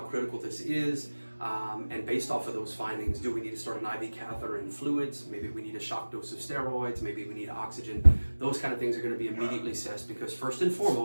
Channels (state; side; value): inverted; both; correlation -1.00